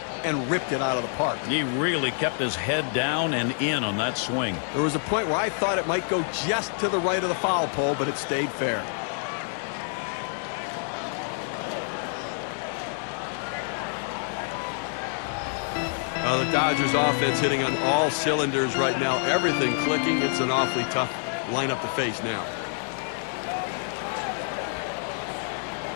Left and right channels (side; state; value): right; silent; 60 dB below the other